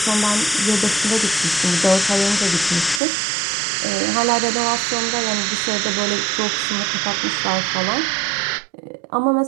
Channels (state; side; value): drops out; left; at 3.0 s